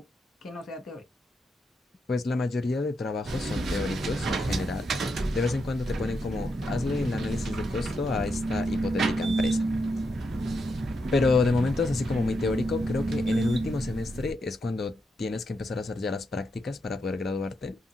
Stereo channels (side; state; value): both; normal; correlation 0.82